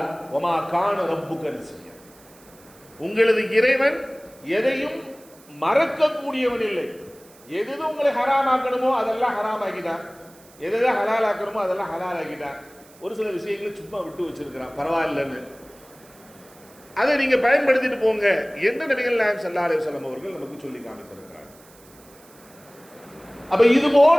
ஒமா கான ரப்புக நசியா, உங்களது இறைவன் எதையும் மறக்கக்கூடியவன் இல்லை. எது உங்களை ஹராமாக்கணுமோ அதெல்லாம் ஹராம் ஆக்கிட்டான், எதை ஹலால் ஆக்கணுமோ அதெல்லாம் ஹலால் ஆக்கிட்டான். ஒரு சில விஷயங்களை சும்மா விட்டு வச்சிருக்கிறான், பரவாயில்லன்னு. அதை நீங்க பயன்படுத்திட்டு போங்க என்று நபிகள் நாயகம் ஸல்லல்லாஹு அலைஹி வஸல்லம் அவர்கள் நமக்கு சொல்லி காமித்திருக்கிறார். அப்ப இது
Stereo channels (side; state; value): right; noise; hiss, 25 dB below the sound